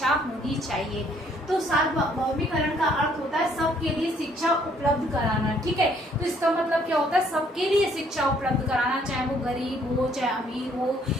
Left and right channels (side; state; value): both; normal; correlation 0.64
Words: होनी चाहिए। तो सार्वभौमिकरण का अर्थ होता है सबके लिए शिक्षा उपलब्ध कराना। ठीक है, तो इसका मतलब क्या होता है? सबके लिए शिक्षा उपलब्ध कराना, चाहे वो गरीब हो, चाहे अमीर हो,